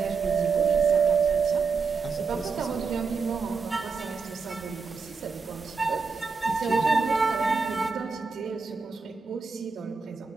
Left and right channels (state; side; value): quieter; left; 4.9 dB